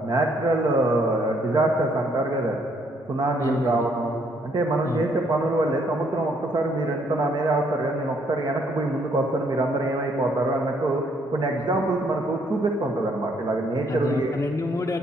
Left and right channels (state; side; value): normal; both; correlation 0.68